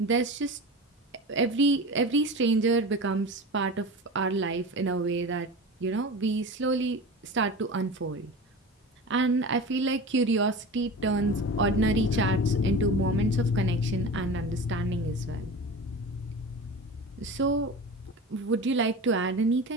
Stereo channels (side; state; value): both; normal; correlation 0.31